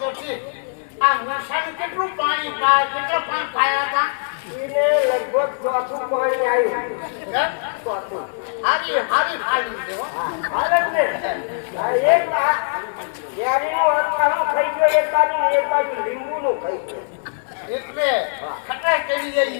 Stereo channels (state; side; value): silent; right; 59 dB below the other